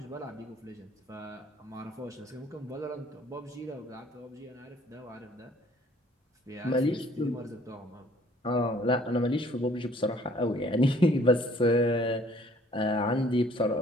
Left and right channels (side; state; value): both; normal; correlation 0.58